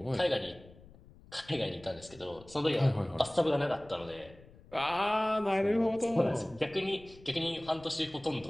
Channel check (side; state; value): left; noise; rumble, 22 dB below the sound